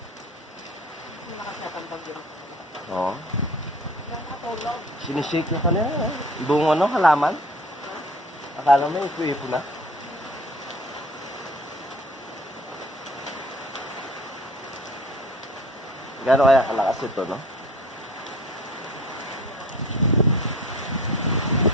Nakasap ang bagyo. Oo. Nakatulog. Sinishake yung kanina. Buong ano, halaman. Akala mo yung kuwipo na. Gano'n kaya kalakas ito, no?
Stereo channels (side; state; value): both; normal; correlation 0.45